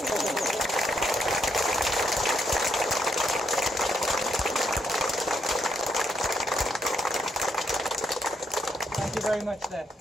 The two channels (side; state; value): both; normal; correlation 0.76